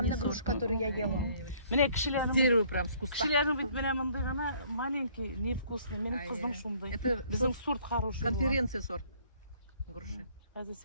сорт. груша, которую я ела. Mene С kişilerin дерева прям, с куста. kişilerin bit mene mındığına malenki невкусный. Benim Ай, kızım ай. şunday. Это Bizim сорт sort хороший. конференции сорт груши. Hadi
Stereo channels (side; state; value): both; inverted; correlation -0.60